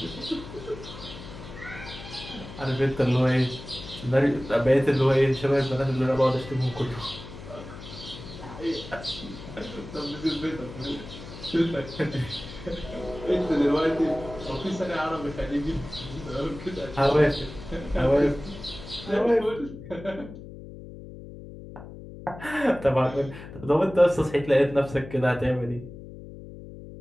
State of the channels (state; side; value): noise; left; hum, 14 dB below the sound